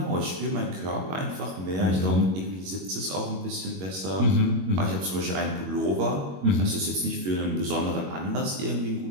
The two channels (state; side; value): late; left; 21 ms